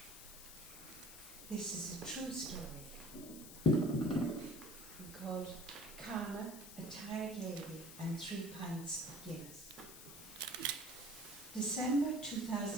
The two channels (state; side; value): noise; left; hiss, 13 dB below the sound